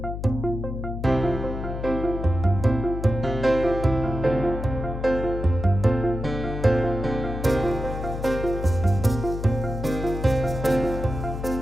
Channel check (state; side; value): noise; left; hum, 6 dB below the sound